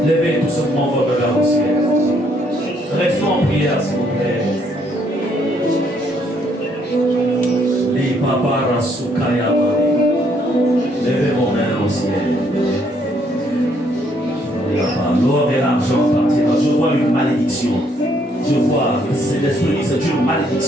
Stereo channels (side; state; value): both; normal; correlation 0.69